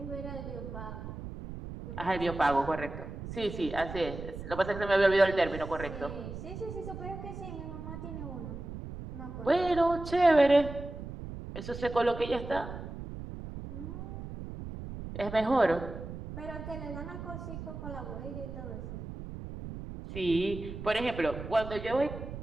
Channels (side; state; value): right; noise; rumble, 9 dB below the sound